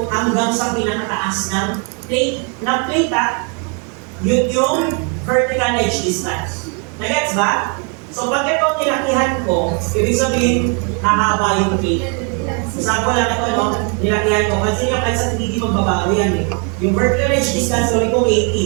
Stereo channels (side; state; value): left; quieter; 37.5 dB